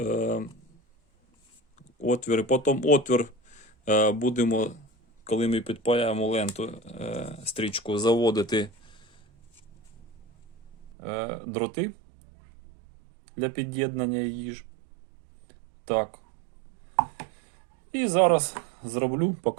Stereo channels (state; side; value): drops out; left; at 10.9 s